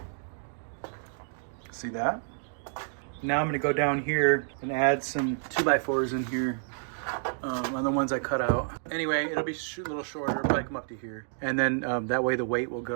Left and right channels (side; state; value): left; silent; digital silence